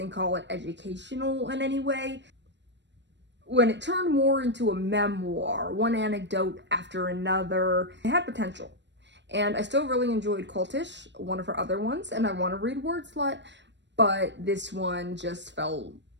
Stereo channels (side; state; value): left; late; 0.52 ms